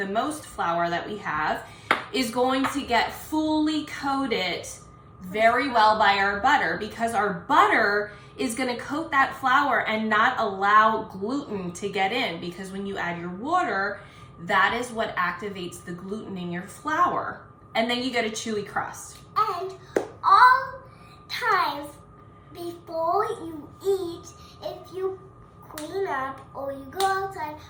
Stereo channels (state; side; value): identical; both; correlation 1.00